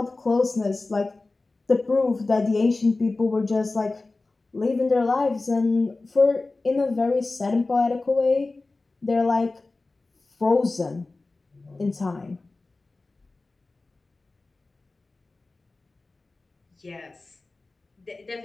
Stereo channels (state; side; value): quieter; right; 3.4 dB